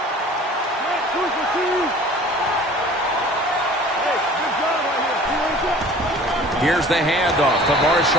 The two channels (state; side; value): normal; both; correlation 0.46